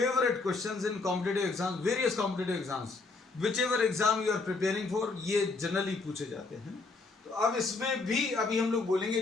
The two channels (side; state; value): right; quieter; 3.8 dB